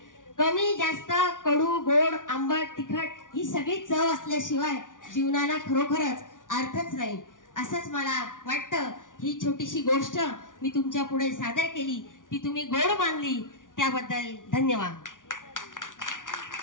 कमी जास्त कडू गोड आंबट तिखट ही सगळी चव असल्याशिवाय जीवनाला खरोखरच अर्थच नाही, असंच मला वाटतं। ही छोटीशी गोष्ट मी तुमच्या पुढे सादर केली, ती तुम्ही गोड मानली त्याबद्दल धन्यवाद।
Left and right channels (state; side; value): late; right; 0.88 ms